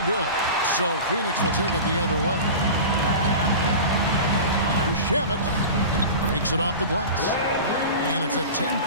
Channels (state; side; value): inverted; both; correlation -0.32